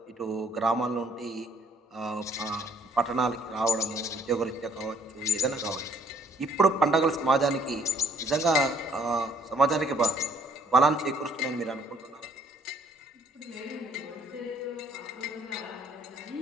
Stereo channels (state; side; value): normal; both; correlation 0.62